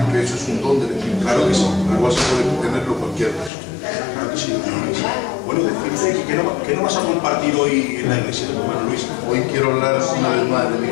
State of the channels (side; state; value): right; drops out; at 3.5 s